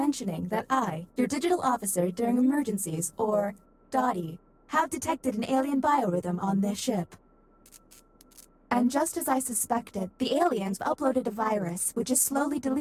that I, your digital officer during emergencies, or Dottie, have detected an alien biorhythm on this ship. And just as I suspected, the aliens uploaded a virus which is slowly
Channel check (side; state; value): both; identical; correlation 1.00